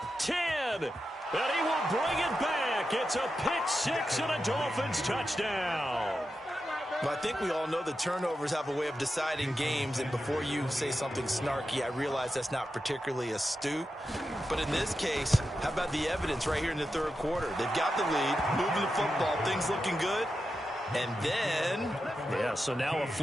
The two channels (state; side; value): normal; both; correlation 0.89